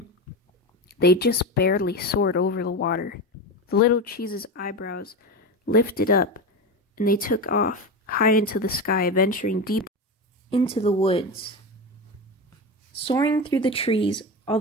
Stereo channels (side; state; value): both; normal; correlation 0.21